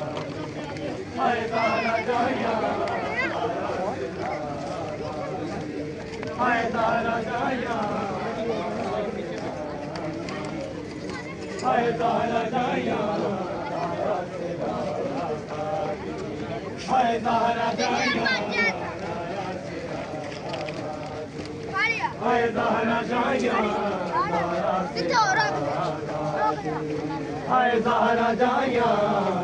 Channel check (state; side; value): identical; both; correlation 1.00